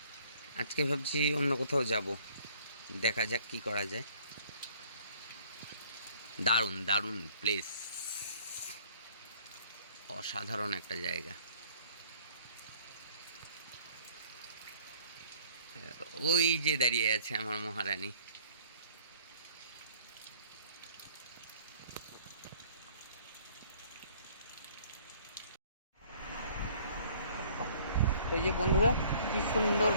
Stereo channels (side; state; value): both; inverted; correlation -0.57